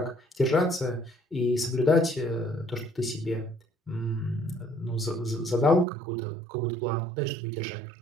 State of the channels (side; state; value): left; drops out; at 5.9 s